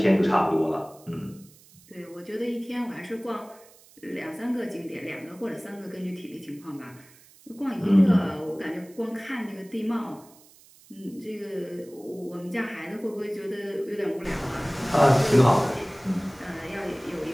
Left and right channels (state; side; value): noise; right; hiss, 25 dB below the sound